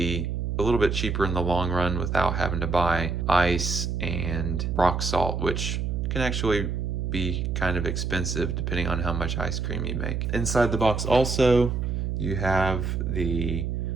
a little bit cheaper in the long run without having to buy ice and rock salt, which can actually be kind of expensive depending on how much ice cream you make. Inside the box also, you have the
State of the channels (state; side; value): noise; right; hum, 1 dB below the sound